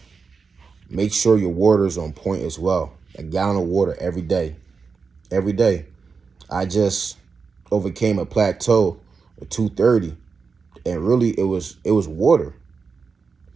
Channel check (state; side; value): quieter; left; 5.1 dB